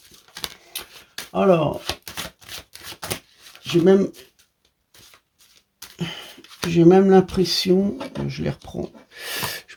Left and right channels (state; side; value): identical; both; correlation 1.00